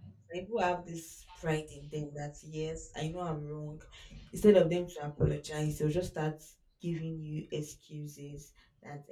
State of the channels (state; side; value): identical; both; correlation 1.00